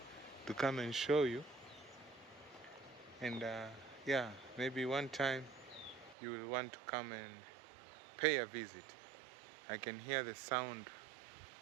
to come and show you. And yeah, maybe one time you will want to come and pay a visit. I can hear the sound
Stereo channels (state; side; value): drops out; left; at 6.2 s